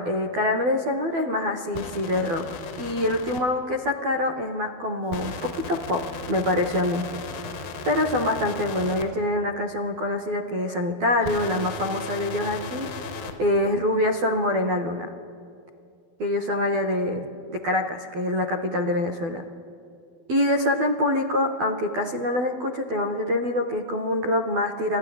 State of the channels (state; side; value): late; left; 12 ms